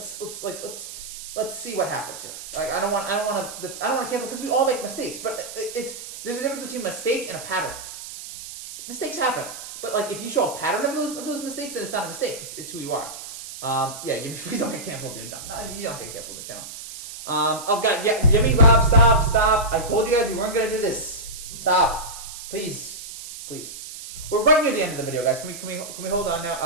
see what happens here. I don't want to cancel because we all make mistakes, but there's a difference between mistake and a pattern. Mistakes happen, but if you show a pattern of those mistakes, then it's not a mistake. It's who you are. Please don't get canceled, dude. No, you don't get canceled. The channel. Oh God, yeah, Yummy Rob, stop! I told you guys we weren't gonna do this. Stop. Please. We're right near the end of the video, guys. Can we hold on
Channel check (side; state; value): right; noise; hiss, 11 dB below the sound